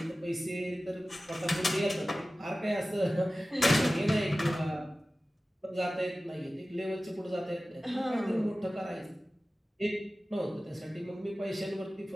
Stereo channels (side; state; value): both; normal; correlation 0.96